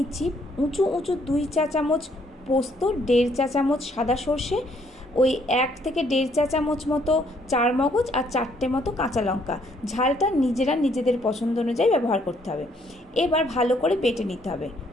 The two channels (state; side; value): normal; both; correlation 0.67